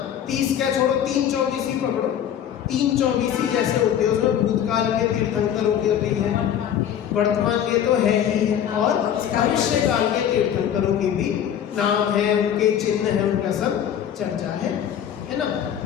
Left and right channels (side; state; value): right; quieter; 9.6 dB